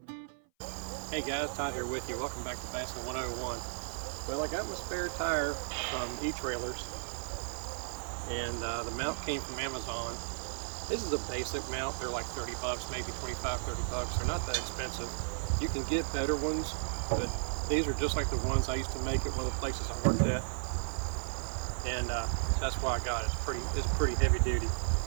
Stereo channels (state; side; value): silent; left; 55 dB below the other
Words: Hey guys, Todd here with you. Welcome back to Bassin 101. Well, I got my spare tire from E-Trailers, and the mount came from Amazon. This is a basic mount. They're like 30 bucks, maybe 25, 30 bucks. They're not that expensive. You can get better ones, but these are just like the ones I used to make at one of the places I worked at, and that's why I got it. It's pretty heavy duty.